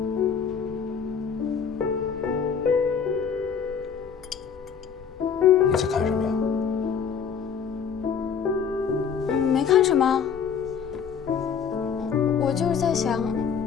你在看什么呀？没看什么。我就是在想，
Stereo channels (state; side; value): quieter; right; 6.9 dB